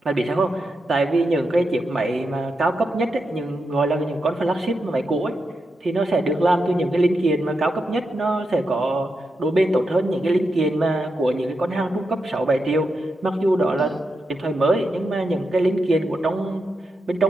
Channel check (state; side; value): normal; both; correlation 0.86